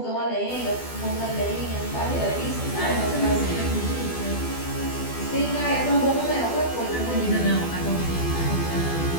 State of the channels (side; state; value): right; late; 12 ms